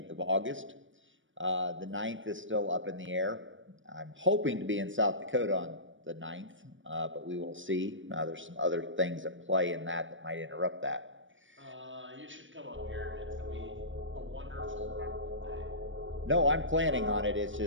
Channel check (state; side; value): late; left; 0.56 ms